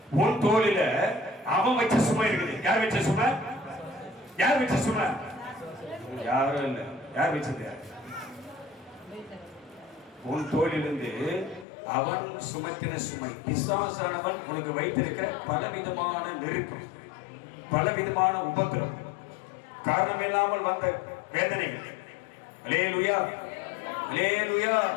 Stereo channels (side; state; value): right; drops out; at 11.7 s